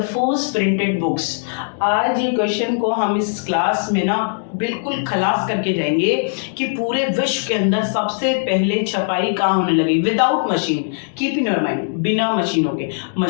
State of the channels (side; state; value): right; silent; digital silence